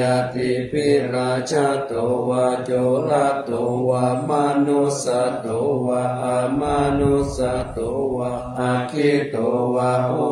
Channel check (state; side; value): identical; both; correlation 1.00